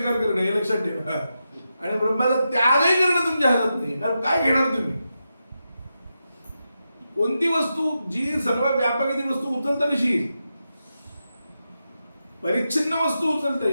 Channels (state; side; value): inverted; both; correlation -0.88